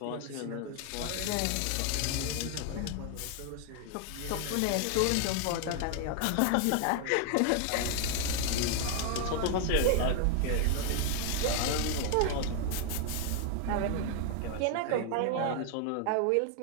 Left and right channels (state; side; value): different; both; correlation 0.00